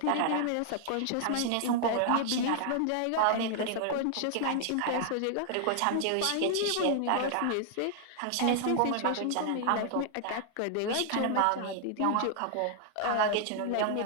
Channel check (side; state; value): both; different; correlation 0.00